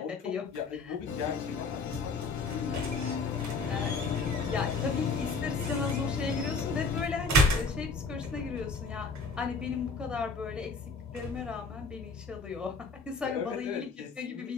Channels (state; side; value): quieter; right; 3.7 dB